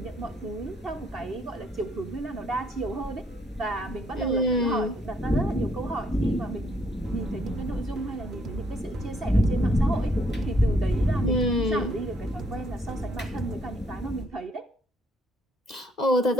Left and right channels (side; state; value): both; normal; correlation 0.69